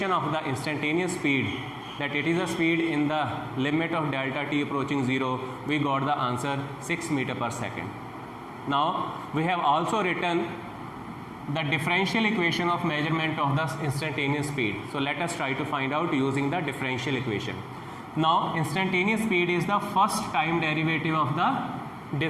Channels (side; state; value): both; identical; correlation 1.00